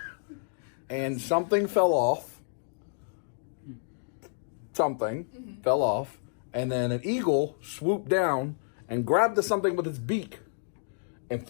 and something fell off, fell off, and then an eagle swooped down and grabbed the something with its beak and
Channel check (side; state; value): right; silent; digital silence